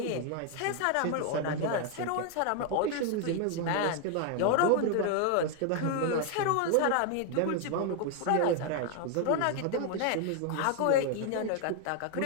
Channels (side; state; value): both; different; correlation 0.00